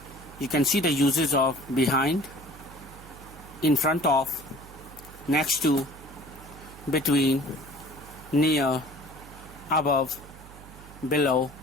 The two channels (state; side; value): noise; right; hum, 18 dB below the sound